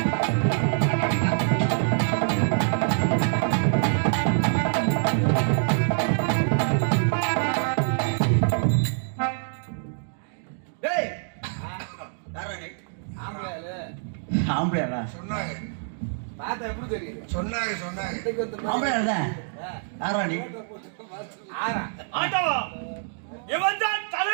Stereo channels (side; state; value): left; silent; digital silence